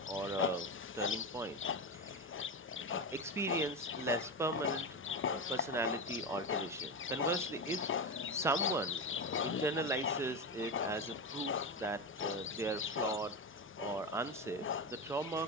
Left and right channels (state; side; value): normal; both; correlation 0.17